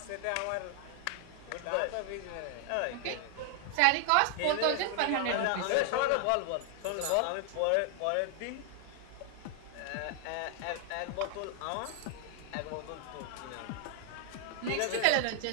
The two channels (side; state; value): both; different; correlation 0.00